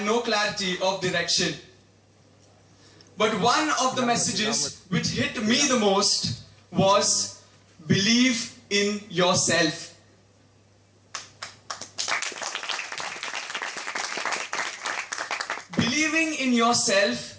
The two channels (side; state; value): both; identical; correlation 1.00